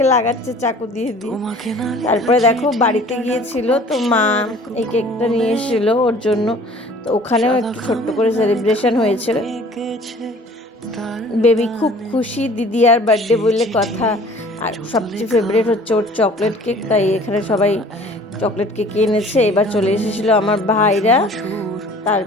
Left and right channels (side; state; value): both; normal; correlation 0.49